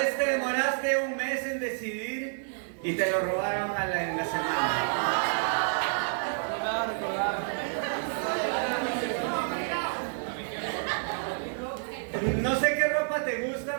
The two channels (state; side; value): silent; left; digital silence